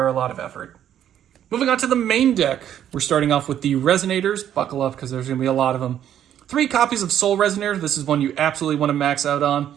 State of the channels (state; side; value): quieter; left; 10.4 dB